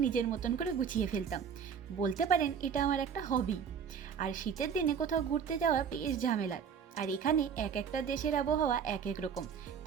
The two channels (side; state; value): left; quieter; 7.2 dB